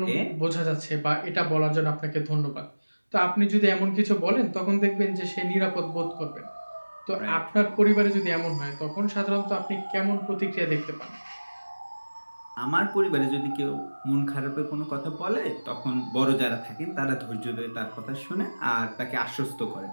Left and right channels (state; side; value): inverted; both; correlation -1.00